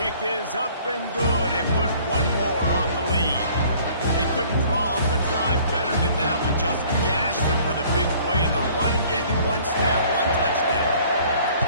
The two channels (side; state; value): both; inverted; correlation -0.55